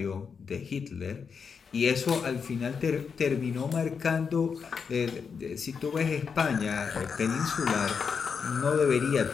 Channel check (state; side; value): quieter; right; 6.0 dB